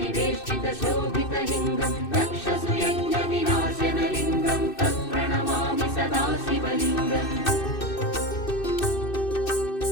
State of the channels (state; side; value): late; right; 2.6 ms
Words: दक्षसुयज्ञविनाशनलिङ्गं तत्प्रणमामि सदा शिवलिङ्गम्.